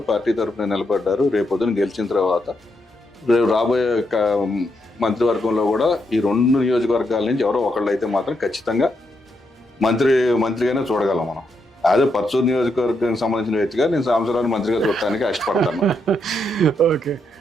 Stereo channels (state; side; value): normal; both; correlation 0.80